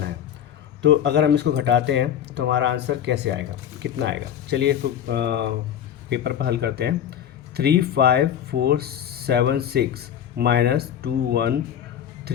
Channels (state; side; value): quieter; right; 9.7 dB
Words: है। तो अगर हम इसको घटाते हैं तो हमारा आंसर कैसे आएगा, कितना आएगा? चलिए इसको पेपर पर हल करते हैं। 35476 माइनस